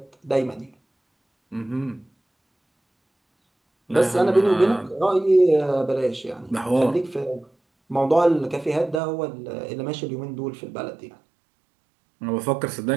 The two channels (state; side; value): drops out; left; at 9.0 s